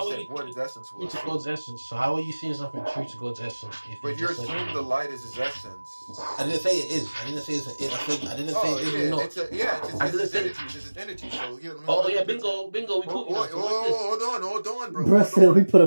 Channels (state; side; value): inverted; both; correlation -1.00